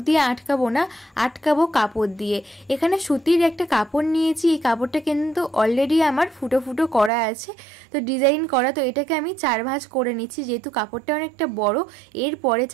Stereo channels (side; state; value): left; drops out; at 7.1 s